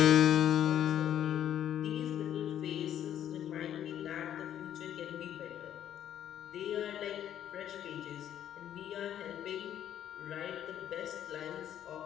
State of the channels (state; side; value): quieter; right; 10.5 dB